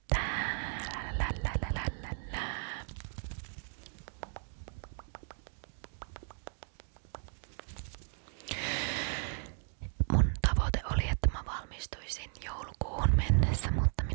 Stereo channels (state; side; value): silent; left; 54 dB below the other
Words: Mun tavoite oli, että mä valmistuisin joulukuuhun mennessä, mutta